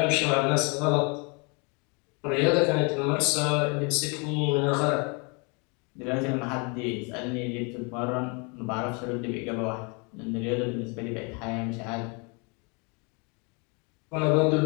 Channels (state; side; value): quieter; right; 32.8 dB